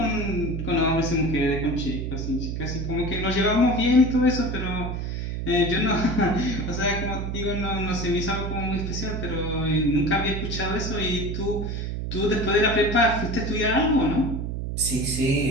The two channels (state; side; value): noise; right; hum, 3 dB below the sound